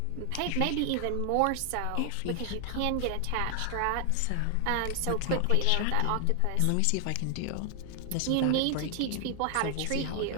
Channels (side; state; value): both; different; correlation 0.00